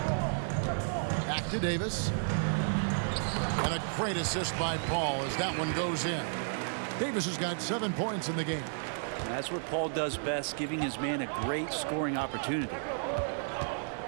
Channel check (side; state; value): left; silent; digital silence